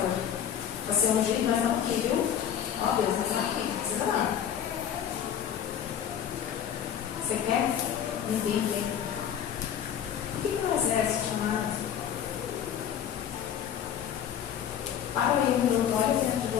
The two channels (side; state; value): right; quieter; 9.3 dB